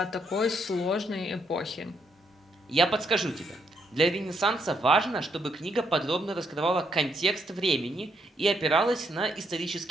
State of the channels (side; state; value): both; normal; correlation 0.75